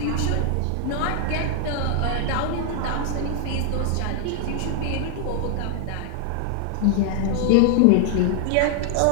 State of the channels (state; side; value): different; both; correlation 0.00